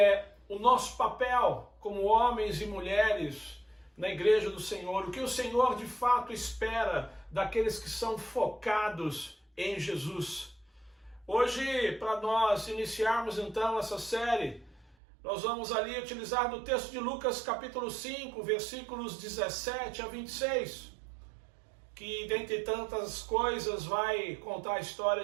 o nosso papel como homens e mulheres na igreja do Senhor, o que o Senhor de fato espera daqueles que são focados em Jesus. Hoje, para nós iniciarmos então essa série, nós vamos ali utilizar do texto de Lucas capítulo 5, versículos 17 a 26, que dentre tantas coisas vai contar a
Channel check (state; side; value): drops out; left; at 15.0 s